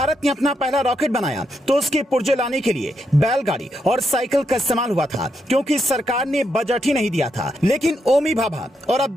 ने अपना पहला रॉकेट बनाया तो उसके पुर्जे लाने के लिए बैलगाड़ी और साइकिल का इस्तेमाल हुआ था, क्योंकि सरकार ने बजट ही नहीं दिया था। लेकिन ओमी भाभा और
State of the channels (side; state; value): both; normal; correlation 0.81